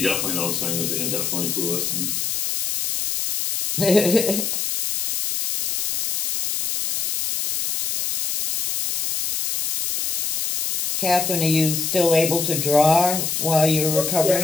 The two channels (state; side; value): noise; left; hiss, 2 dB below the sound